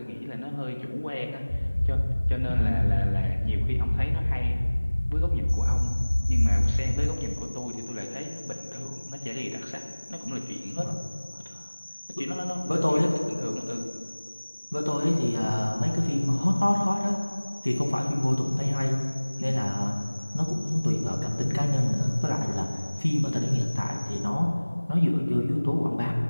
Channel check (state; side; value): inverted; both; correlation -1.00